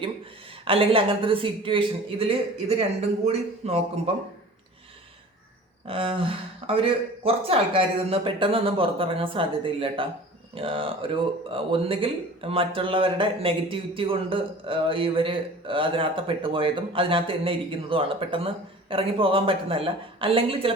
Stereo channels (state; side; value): normal; both; correlation 0.42